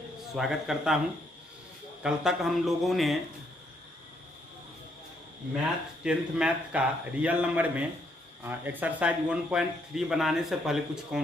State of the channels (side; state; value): both; normal; correlation 0.73